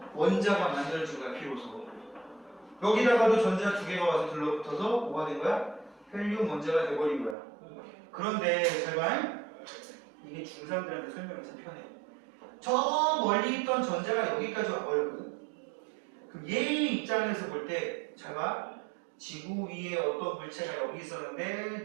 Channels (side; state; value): left; drops out; at 7.4 s